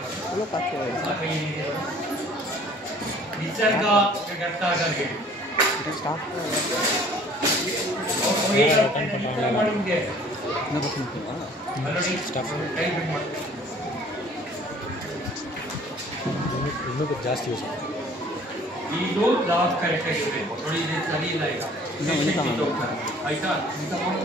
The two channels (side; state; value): both; normal; correlation 0.53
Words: चलो पास निसर्ग करता करके स्टार्ट और ये ಮಾಡುಂಗೆ ना बस ಆಲ್ರೆಡಿ स्टार्ट ಕೈ ಬಿಟ್ಟು ಮಾಡಿ ಇನ್ನೂ ಜಾಸ್ತಿ ಯೂಸ್ ಇದು ಲಾಸ್ಟ್ ಕರೆಕ್ಟ್ ಆಗಿದೆ ನೋಡಿ ಇದು ಸರಿ ಇಲ್ಲ ಈಗ ಆಯ್ತಾ ಇಂತ